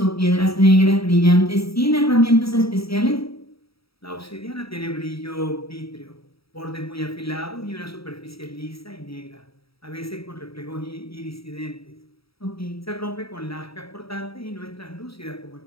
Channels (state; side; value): late; right; 0.76 ms